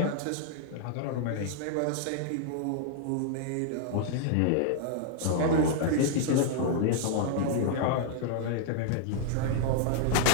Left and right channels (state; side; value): different; both; correlation -0.01